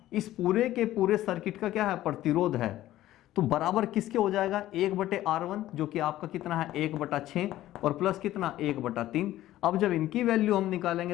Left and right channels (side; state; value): right; quieter; 14.4 dB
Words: इस पूरे के पूरे सर्किट का क्या है, प्रतिरोध है, तो बराबर किसके हो जाएगा, 1/R1 जो कि आपका कितना है 1/6 और प्लस कितना 1/3। अब जब इनकी वैल्यू हम